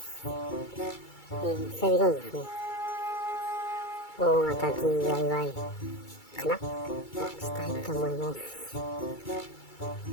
久々にですね、大型 DIY かなをしたいと思います。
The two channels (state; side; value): late; right; 2.3 ms